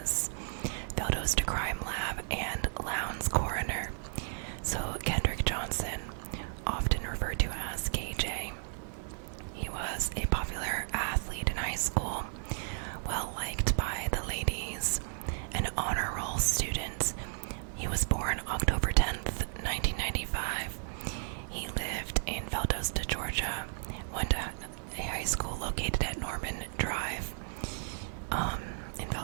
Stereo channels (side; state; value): left; silent; digital silence